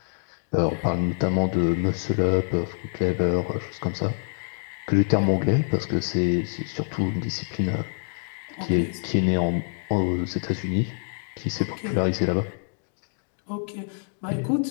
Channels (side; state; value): right; silent; digital silence